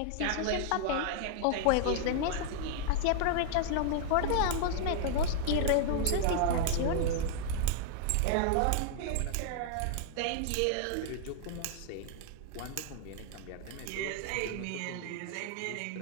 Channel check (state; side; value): different; both; correlation 0.00